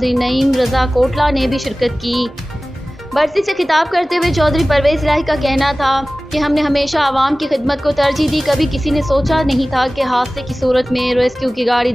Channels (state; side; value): normal; both; correlation 0.97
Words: नईम रज़ा कोटला ने भी शिरकत की। बरसी से खिताब करते हुए चौधरी परवेज़ इलाही का कहना था कि हमने हमेशा आवाम की खिदमत को तरजीह दी। कभी किसी ने सोचा नहीं था कि हादसे की सूरत में रेस्क्यू की गाड़ी